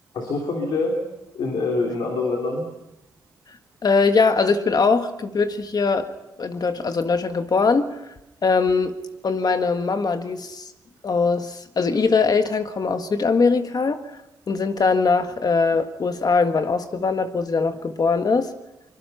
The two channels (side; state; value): right; quieter; 4.0 dB